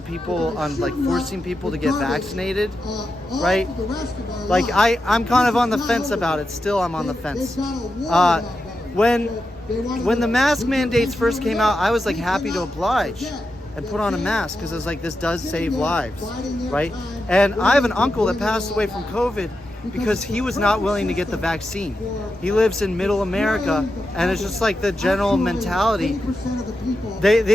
people, on like forcing people to get vaccinated, right? Like I'm kind of on the fence about it. Still, I'm on the fence. When the mask mandates first came out, I was like happy to oblige and put on a mask because I was like, this does save lives, right? And I have an uncle that passed away from COVID because he was not willing to get the vaccine. He lives in middle America, and it's just like the general mentality.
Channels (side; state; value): both; normal; correlation 0.89